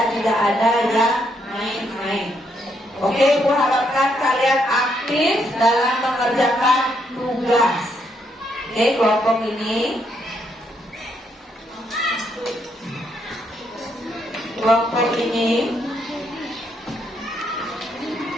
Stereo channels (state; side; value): normal; both; correlation 0.75